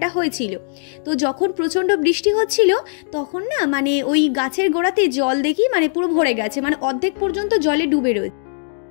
হয়েছিল। তো যখন প্রচণ্ড বৃষ্টি হচ্ছিল তখন না মানে ওই গাছের গোড়াতে জল দেখি মানে পুরো ভরে গেছে, মানে অর্ধেক পর্যন্ত জলে ডুবে রয়েছে।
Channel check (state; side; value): silent; right; digital silence